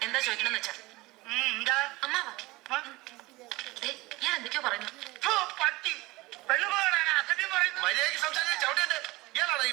എന്താ ചോദിക്കണമെന്ന് വെച്ചാ. അമ്മാവാ, ഞാൻ എന്തൊക്കെയോ പറയുന്നു. മര്യാദയ്ക്ക് സംസാരിച്ച് ചവിട്ടേണ്ട. ഇയാളാണ് ഈ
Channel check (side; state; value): left; quieter; 21.1 dB